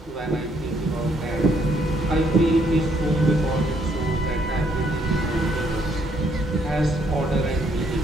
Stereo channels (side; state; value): both; normal; correlation 0.70